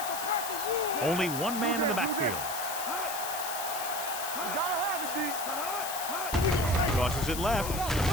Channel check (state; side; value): noise; left; hiss, 6 dB below the sound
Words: Only one man in the backfield. Tosses it left.